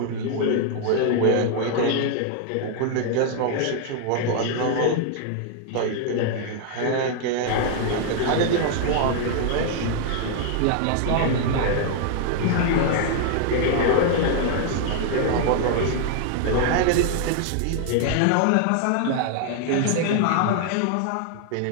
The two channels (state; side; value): different; both; correlation 0.00